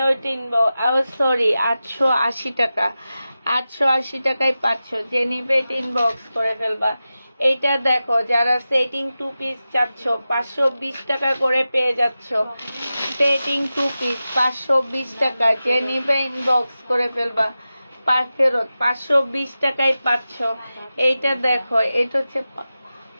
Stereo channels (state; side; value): inverted; both; correlation -0.93